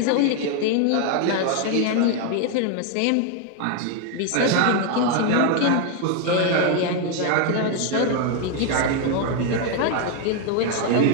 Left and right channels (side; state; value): both; different; correlation 0.01